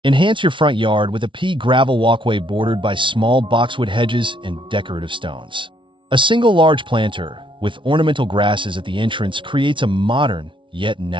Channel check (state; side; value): late; left; 0.24 ms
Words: Enhance your front yard with a pea gravel walkway bordered by small boxwood hedges and decorative stones. A single large planter with ornamental grasses at the entrance creates a modern yet